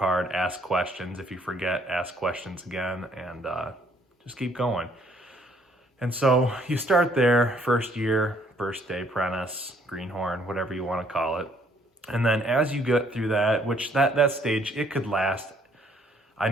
ask questions. If you forget, ask questions again, and just keep going. And so you start there, first year, first day apprentice, greenhorn, whatever you want to call it. And then as you get through that, which that stage, it could last. I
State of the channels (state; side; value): normal; both; correlation 0.65